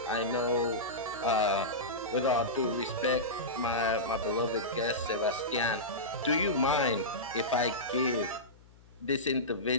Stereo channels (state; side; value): noise; left; hum, 25 dB below the sound